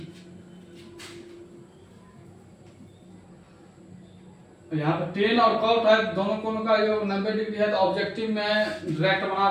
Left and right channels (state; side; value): identical; both; correlation 1.00